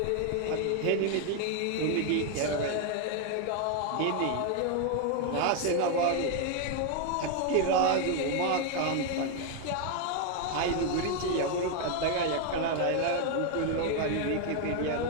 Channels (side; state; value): both; different; correlation 0.01